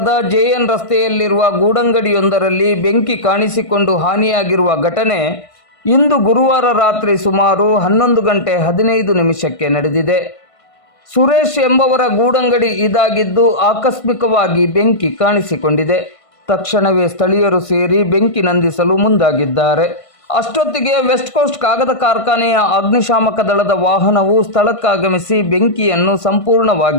ಜೆಎನ್ ರಸ್ತೆಯಲ್ಲಿರುವ ಗೂಡಂಗಡಿಯೊಂದರಲ್ಲಿ ಬೆಂಕಿ ಕಾಣಿಸಿಕೊಂಡು ಹಾನಿಯಾಗಿರುವ ಘಟನೆ ಇಂದು ಗುರುವಾರ ರಾತ್ರಿ ಸುಮಾರು 11:15 ನಡೆದಿದೆ. ಸುರೇಶ್ ಎಂಬವರ ಗೂಡಂಗಡಿ ಇದಾಗಿದ್ದು ಆಕಸ್ಮಿಕವಾಗಿ ಬೆಂಕಿ ಕಾಣಿಸಿಕೊಂಡಿದೆ. ತಕ್ಷಣವೇ ಸ್ಥಳೀಯರು ಸೇರಿ ಬೆಂಕಿ ನಂದಿಸಲು ಮುಂದಾಗಿದ್ದಾರೆ. ಅಷ್ಟೊತ್ತಿಗೆ ವೆಸ್ಟ್ ಕೋಸ್ಟ್ ಕಾಗದ ಕಾರ್ಖಾನೆಯ ಅಗ್ನಿಶಾಮಕ ದಳದ ವಾಹನವು ಸ್ಥಳಕ್ಕಾಗಮಿಸಿ ಬೆಂಕಿಯನ್ನು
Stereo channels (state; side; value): late; right; 1.5 ms